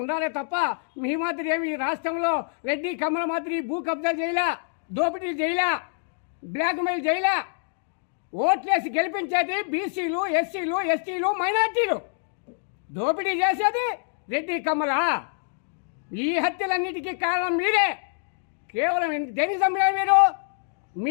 ఉండాలే తప్ప మీ మాదిరి ఏమి ఈ రాష్ట్రంలో రెడ్డి కమల మాదిరి భూ కబ్జా చేయలా, దోపిడీలు చేయలా, బ్లాక్మెయిల్ చేయలా. ఓట్లేసి గెలిపించేది బీసీలు, ఎస్సీలు, ఎస్టీలు, మైనార్టీలు. దోపిడీ చేసేది రెడ్డి కమల. ఈ హత్యలన్నిటికీ కారణం మీరే. కేవలం దేనికి చంపినారు మీరు?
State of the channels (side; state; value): right; silent; digital silence